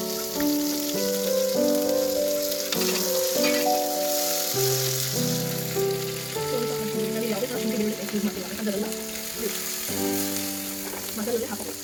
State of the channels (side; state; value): both; identical; correlation 1.00